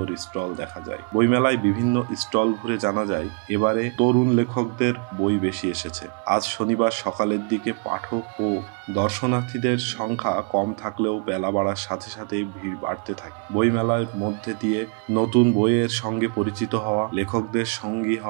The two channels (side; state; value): left; quieter; 37.0 dB